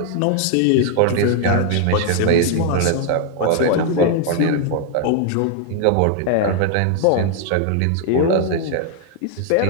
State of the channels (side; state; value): both; different; correlation 0.00